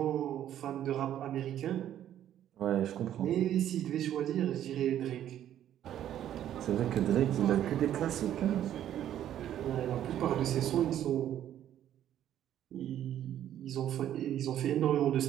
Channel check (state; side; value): quieter; left; 11.2 dB